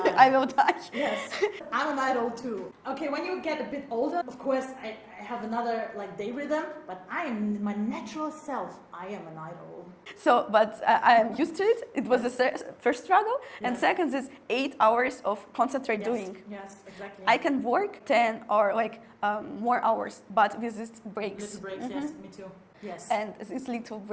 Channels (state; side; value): identical; both; correlation 1.00